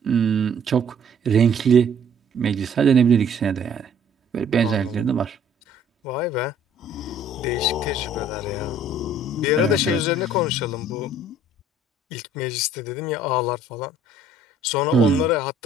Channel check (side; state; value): both; normal; correlation 0.57